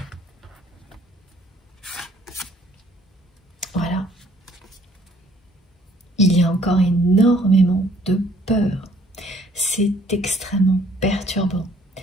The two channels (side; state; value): both; normal; correlation 0.60